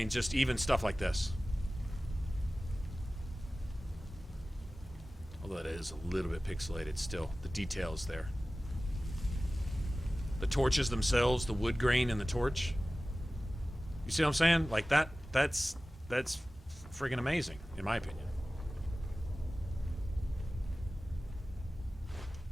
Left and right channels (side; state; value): both; normal; correlation 0.97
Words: just even stuff like this. Although it is a little bit pixelated still. The details there. The torches themselves, the wood grain in the torch. You see what I'm saying? Like that's friggin' amazing, in my opinion.